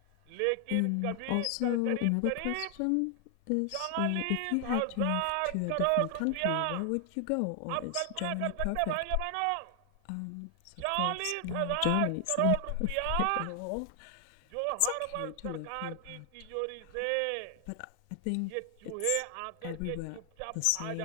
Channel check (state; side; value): different; both; correlation 0.00